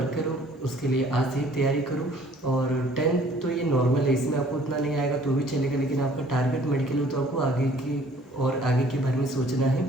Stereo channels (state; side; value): normal; both; correlation 0.56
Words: करो, उसके लिए आज से ही तैयारी करो। और 10th तो ये नॉर्मल है, इसमें आपको उतना नहीं आएगा तो भी चलेगा, लेकिन आपका टारगेट मेडिकल हो तो आपको आगे की और आगे के बारे में सोचना है।